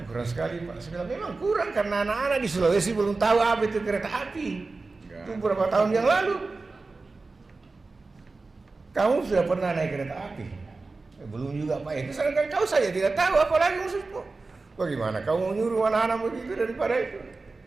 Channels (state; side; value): quieter; left; 3.7 dB